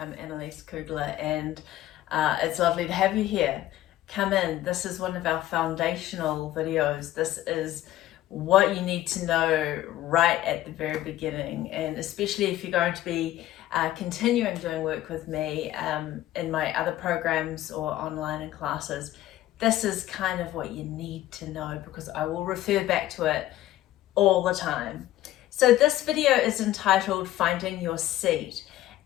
Annalise Kugler and it's lovely to have you here. Come in. This is one of our foundational videos. This is what you need to know right at the very beginning, and especially if you're going to be continuing doing work with me in my other programs or online in classes. This is kind of what you need to know because I will refer back to it all the time. So this video is entitled Finding Your Seat,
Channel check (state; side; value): quieter; right; 14.3 dB